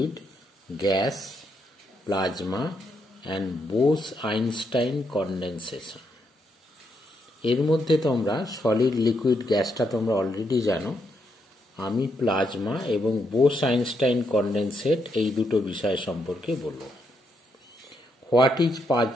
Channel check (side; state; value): both; normal; correlation 0.78